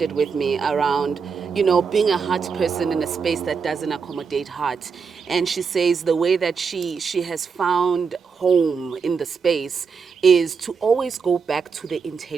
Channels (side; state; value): left; quieter; 5.6 dB